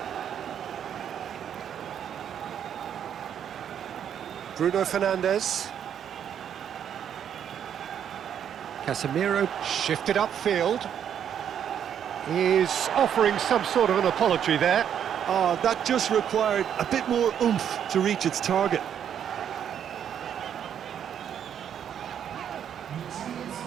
Bruno Fernandes. Casemiro shifted upfield. He's offering some sort of an apology there. Oh, that just required a bit more oomph to reach its target.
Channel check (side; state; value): left; quieter; 9.0 dB